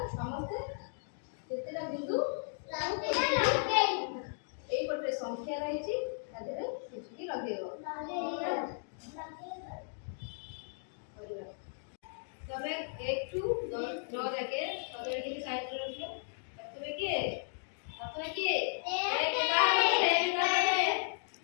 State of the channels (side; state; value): right; silent; digital silence